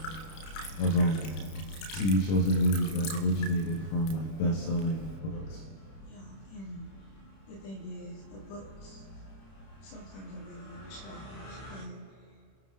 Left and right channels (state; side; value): late; right; 31 ms